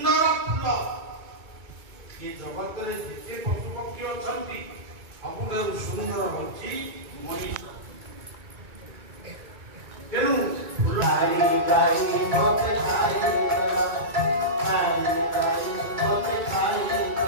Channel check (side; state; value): left; late; 2.2 ms